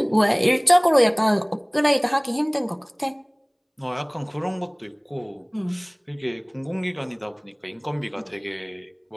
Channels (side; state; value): both; identical; correlation 1.00